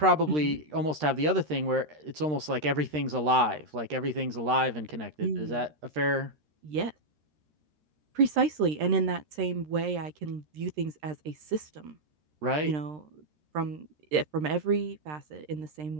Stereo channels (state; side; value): late; left; 13 ms